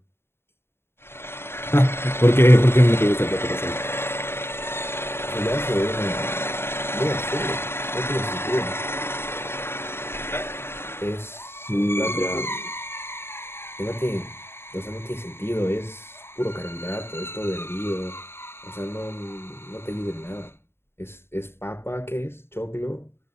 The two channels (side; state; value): right; late; 0.11 ms